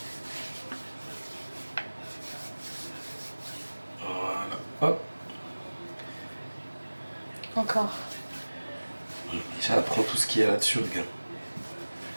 Voilà, hop. Encore. Déjà, prends tout ce qu'il y a là-dessus, regarde.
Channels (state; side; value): inverted; both; correlation -1.00